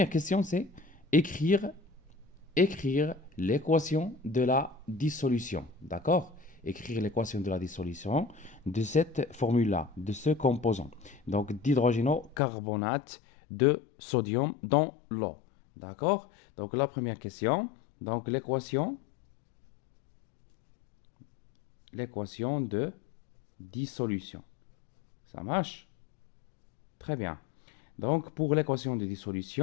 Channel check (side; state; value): right; drops out; at 12.4 s